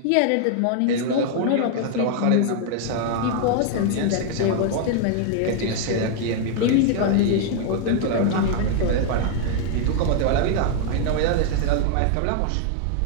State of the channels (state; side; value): different; both; correlation 0.00